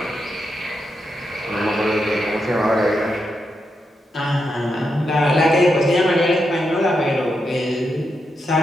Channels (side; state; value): both; normal; correlation 0.84